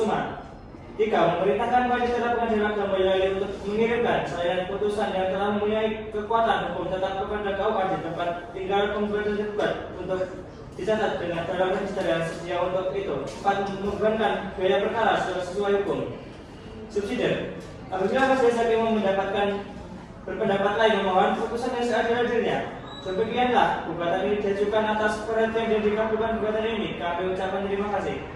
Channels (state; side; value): identical; both; correlation 1.00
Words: 3. Memerintahkan Majelis Pengadilan Agama Boyolali untuk mengirimkan salinan putusan yang telah mempunyai kekuatan hukum tetap kepada KUA di tempat tinggal penggugat dan tergugat untuk dicatat dengan dalam register yang sedia untuk itu. 4. Membebankan biaya perkara sesuai hukum. Subsidiar. Apabila majelis hakim mendapatkan berpendapat lain memohon putusan yang seadil-adilnya. Demikianlah gugatan ini diajukan atas perhatian dan dikabulkan gugatan ini. Kami ucapkan terima kasih.